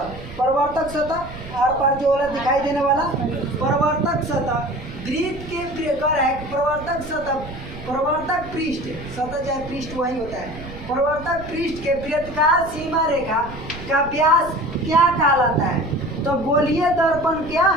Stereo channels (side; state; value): right; noise; rumble, 13 dB below the sound